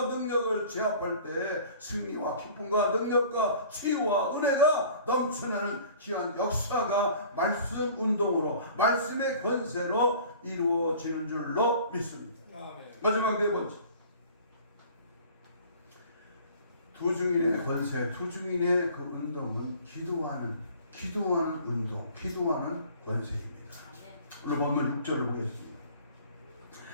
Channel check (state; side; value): inverted; both; correlation -0.48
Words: 능력을 제압할 때 승리와 기쁨과 능력과 치유와 은혜가 넘쳐나는 귀한 역사가 말씀 운동으로, 말씀의 권세로 이루어지는 줄로 믿습니다. 마지막 네 번째, 두 증인의 권세, 두 증인의 그 운동은 기도하는 운동, 기도하는 권세입니다. 오늘 본문 6절을 보겠습니다.